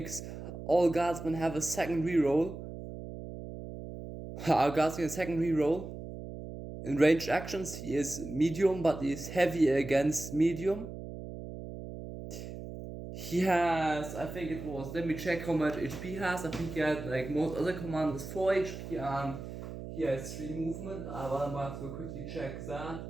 all Guardsmen have a second reroll. Our Guards get a second reroll. In ranged actions, he is medium, but he is heavy against medium. He has, I think it was, let me check how much HP he has. I think he had, like most other commanders, 4 HP and he has 3 movement. I will have to quickly check that.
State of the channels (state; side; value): noise; right; hum, 10 dB below the sound